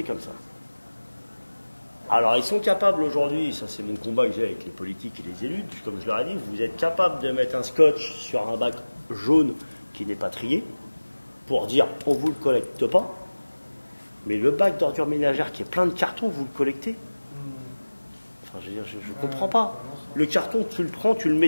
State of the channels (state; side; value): inverted; both; correlation -1.00